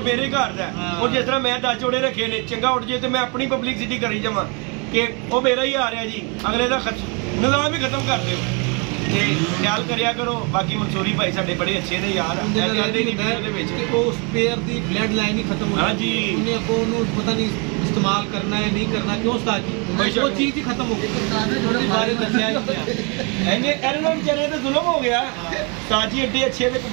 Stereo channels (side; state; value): left; quieter; 33.0 dB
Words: ਘਰ ਦਾ ਉਹ ਜਿਸ ਤਰ੍ਹਾਂ ਮੈਂ 10 ਜੋੜੇ ਰੱਖੇ ਨੇ ਚੰਗਾ ਉੱਡ ਜੇ ਤੇ ਮੈਂ ਆਪਣੀ ਪਬਲਿਸਿਟੀ ਕਰੀ ਜਾਵਾਂ ਕਿ ਉਹ ਮੇਰਾ ਹੀ ਆ ਰਿਹਾ ਜੀ ਅਗਲੇ ਦਾ ਨਿਜ਼ਾਮ ਹੀ ਖਤਮ ਕਰ ਦਿਓ ਤੇ ਖਿਆਲ ਕਰਿਆ ਕਰੋ। ਬਾਕੀ ਮਨਸੂਰੀ ਭਾਈ ਸਾਡੇ ਬੜੇ ਅੱਛੇ ਨੇ ਯਾਰ ਉਹਦੇ ਵਿੱਚ ਉਹ ਸਪੇਅਰ ਦੀ ਬਲੱਡ ਲਾਈਨ ਹੀ ਖਤਮ ਹੋ ਗਈ। ਹਾਂਜੀ ਉਹਨੇ ਅੱਗੋਂ ਉਹਨੂੰ ਪਤਾ ਨਹੀਂ ਇਸਤੇਮਾਲ ਕਰਨਾ ਹੈ ਨਹੀਂ ਕਰਨਾ ਕਿਉਂ ਉਸਤਾਦ ਜੀ ਉਹ ਚੀਜ਼ ਹੀ ਖਤਮ ਹੋ ਗਈ ਉਹਦੇ ਬਾਰੇ ਦੱਸਿਆ ਹੀ ਨਹੀਂ। ਇਹਨਾਂ ਨੂੰ ਵਿਚਾਰੇ ਤੇ ਜ਼ੁਲਮ ਹੋ ਗਿਆ। ਸਾਜੀ ਐਡੇ ਅੱਛੇ ਦੇ